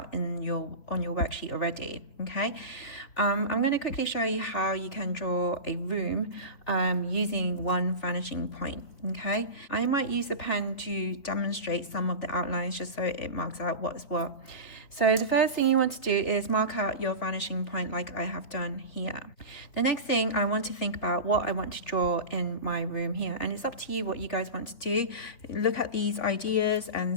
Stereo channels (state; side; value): late; right; 3.8 ms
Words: on your worksheet already. Okay, I'm going to quickly show you how you can draw a room using one vanishing point. Okay, I might use a pen to demonstrate some of the outlines just so it marks out what's what. So the first thing you want to do is mark out your vanishing point like I have done here. The next thing, I want to think about what I want to draw in my room here, and it's up to you what you guys want to do. Look at these ideas